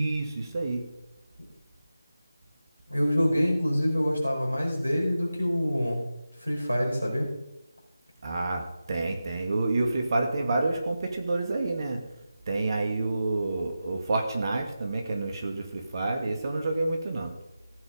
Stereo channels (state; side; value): inverted; both; correlation -0.92